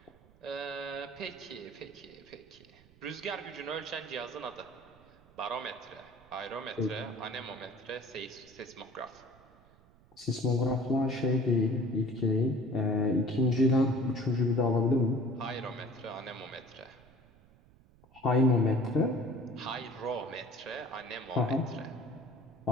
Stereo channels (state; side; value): noise; right; rumble, 27 dB below the sound